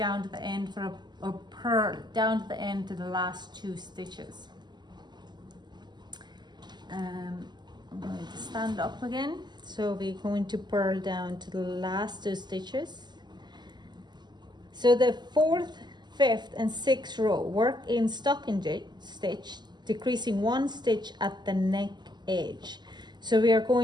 to the end for a purl down to the end to the last 2 stitches. I'm going to stand up again. So we're going to purl down to the last 2 stitches. So the 4th, 5th and 6th row, work in stocking stitch, decreasing 1 stitch at the neck edge. So we are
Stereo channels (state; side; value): late; left; 0.21 ms